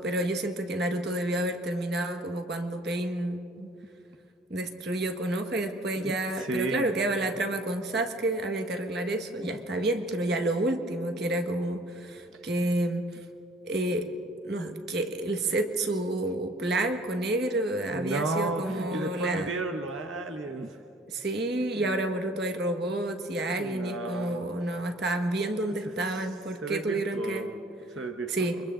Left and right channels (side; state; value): both; normal; correlation 0.53